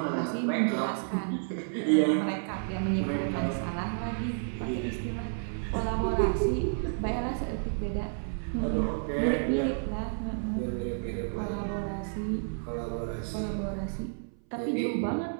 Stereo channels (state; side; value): silent; left; 57 dB below the other